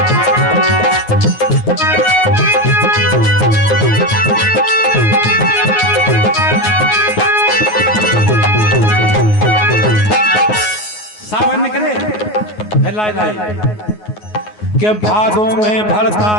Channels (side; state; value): right; late; 9.5 ms